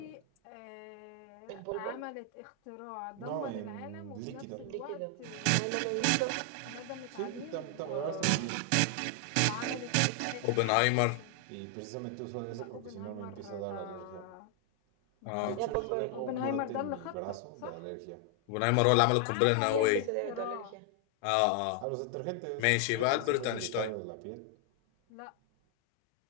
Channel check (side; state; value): both; different; correlation 0.00